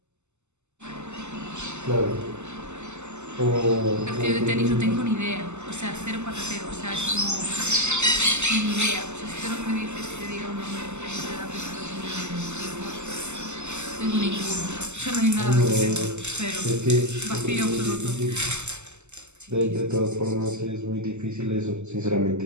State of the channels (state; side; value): late; left; 0.83 ms